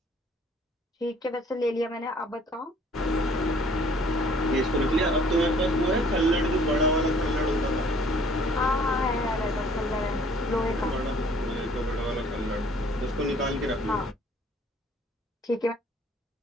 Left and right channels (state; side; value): normal; both; correlation 0.57